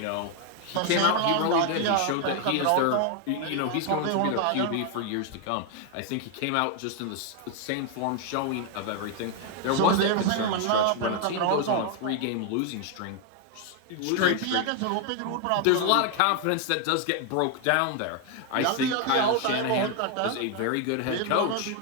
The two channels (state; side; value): different; both; correlation 0.00